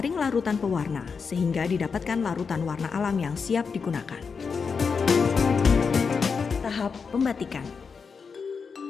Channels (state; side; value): quieter; right; 5.5 dB